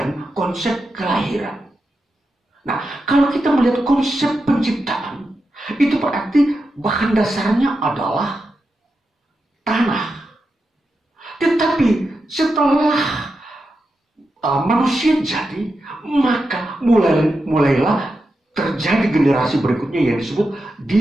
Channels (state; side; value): normal; both; correlation 0.88